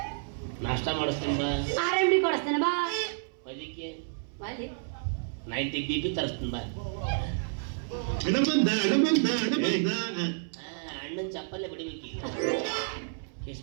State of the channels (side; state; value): left; silent; 58 dB below the other